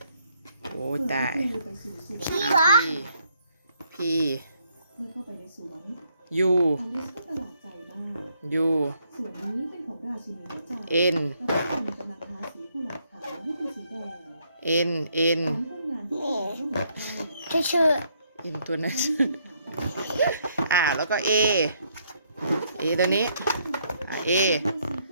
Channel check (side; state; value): both; inverted; correlation -0.71